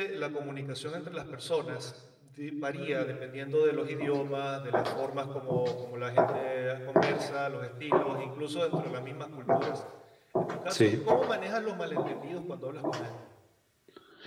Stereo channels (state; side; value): identical; both; correlation 1.00